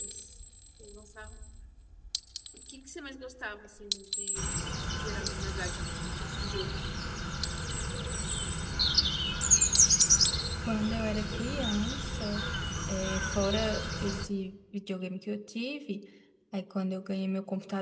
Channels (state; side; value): identical; both; correlation 1.00